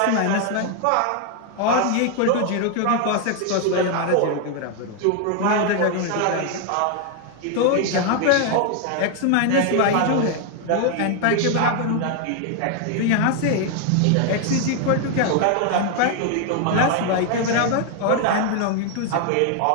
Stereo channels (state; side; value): different; both; correlation 0.00